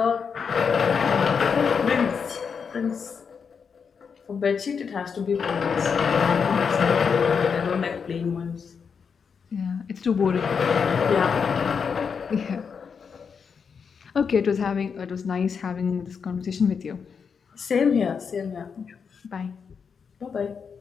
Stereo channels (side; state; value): right; quieter; 6.2 dB